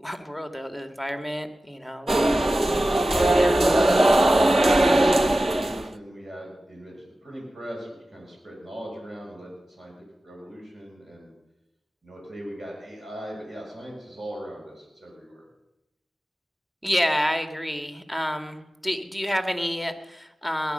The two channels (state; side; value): normal; both; correlation 0.94